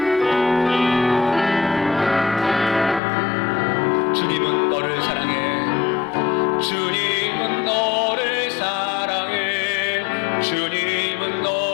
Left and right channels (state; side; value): drops out; right; at 3.0 s